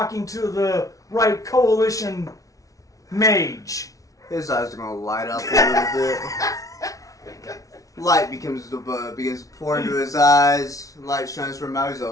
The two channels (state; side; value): late; right; 0.17 ms